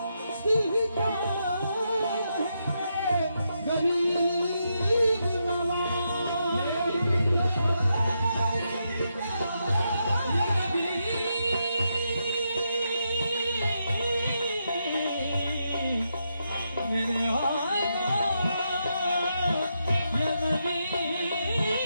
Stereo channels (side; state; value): both; inverted; correlation -0.82